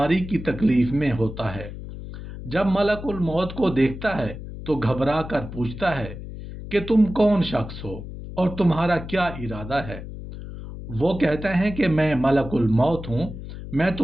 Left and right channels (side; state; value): left; noise; hum, 11 dB below the sound